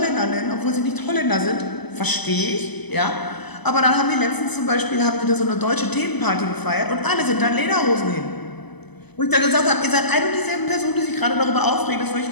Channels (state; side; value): late; right; 0.99 ms